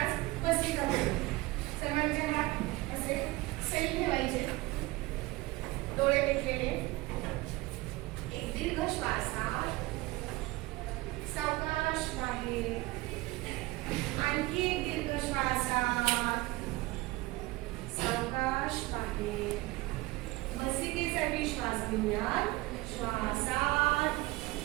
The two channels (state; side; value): quieter; left; 20.4 dB